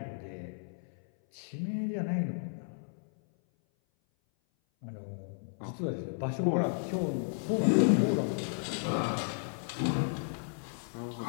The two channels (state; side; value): silent; right; 55 dB below the other